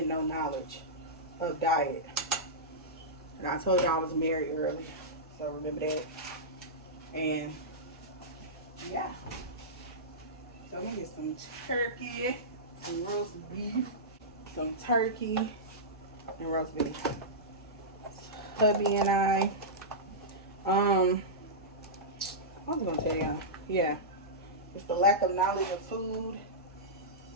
know knowledge of diet. And I told you I was married early, so remember that. And yeah. So we get some turkey, some roast beef, some turkey, and roast beef. Hubby and I, I was gonna tell y'all, yeah, it's the lack of knowledge of food.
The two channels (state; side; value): normal; both; correlation -0.14